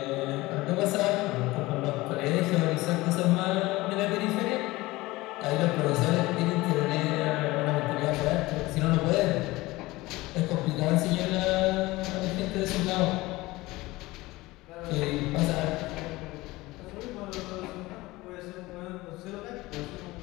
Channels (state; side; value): quieter; right; 20.0 dB